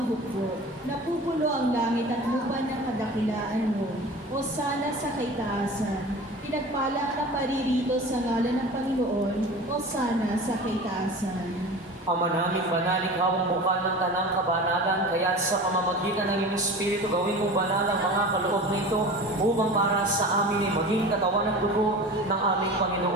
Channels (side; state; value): both; normal; correlation 0.36